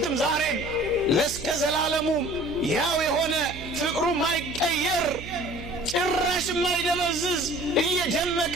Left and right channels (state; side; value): noise; right; hum, 13 dB below the sound